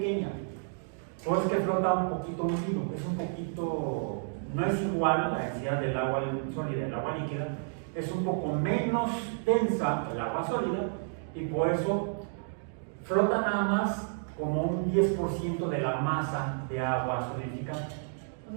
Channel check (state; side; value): silent; left; digital silence